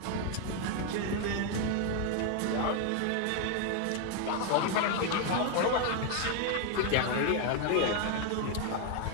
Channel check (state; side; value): different; both; correlation 0.00